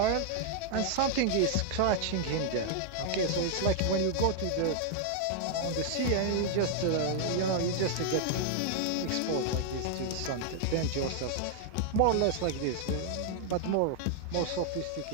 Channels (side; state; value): both; different; correlation 0.00